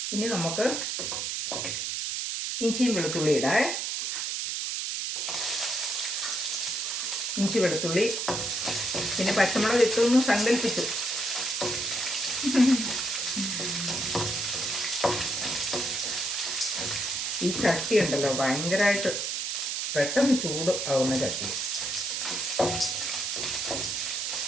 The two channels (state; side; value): noise; right; hiss, 1 dB below the sound